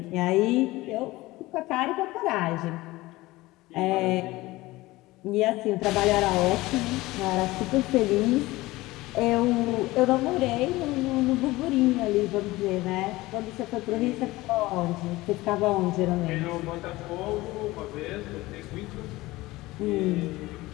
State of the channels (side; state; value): right; quieter; 19.3 dB